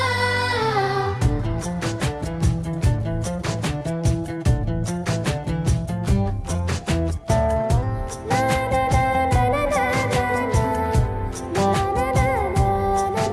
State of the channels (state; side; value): identical; both; correlation 1.00